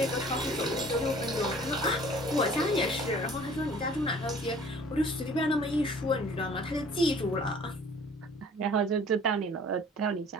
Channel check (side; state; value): both; normal; correlation 0.51